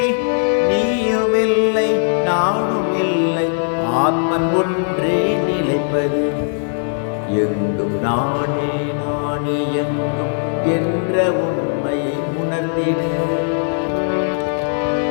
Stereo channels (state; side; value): silent; right; digital silence